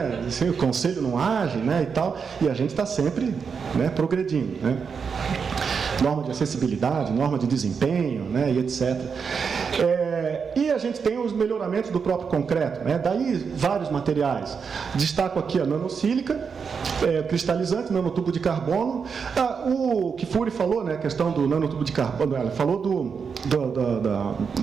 Assim, o conselho não age, né? E tal. E a gente está sempre, né, progredindo, né? Norma de acessibilidade, norma de desempenho, né, e etc. E a gente tem os melhoramentos do próprio concreto, né? Daí vários materiais. Destaco aqui a nanosílica, cristalizante, nanotubo de carbono. O Kifuri falou, né, a questão do nanotubo de carbono, ela falou do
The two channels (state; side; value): quieter; left; 6.0 dB